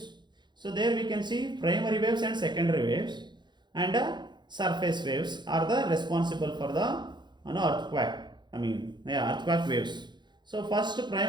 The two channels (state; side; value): late; left; 0.21 ms